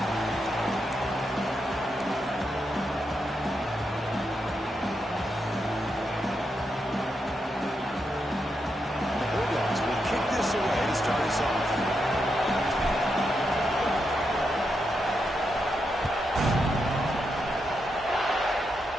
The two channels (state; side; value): normal; both; correlation 0.83